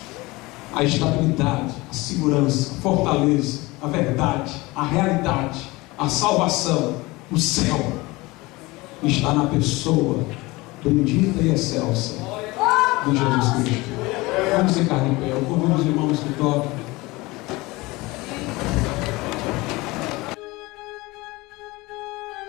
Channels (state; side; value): quieter; right; 22.0 dB